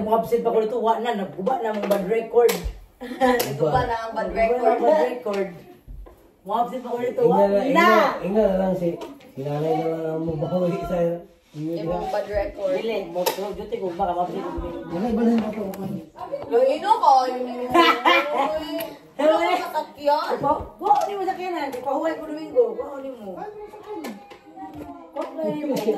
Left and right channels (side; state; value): both; identical; correlation 1.00